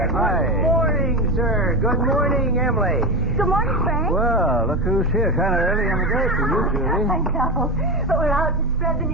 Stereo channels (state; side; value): normal; both; correlation 0.18